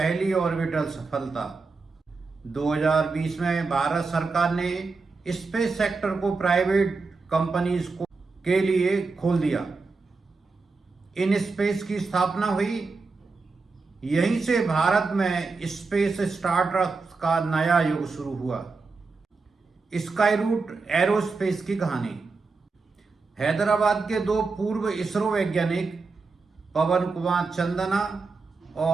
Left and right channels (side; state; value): left; quieter; 4.2 dB